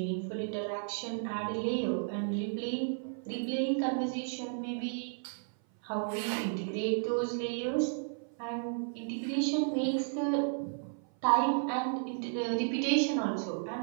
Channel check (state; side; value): silent; left; 56 dB below the other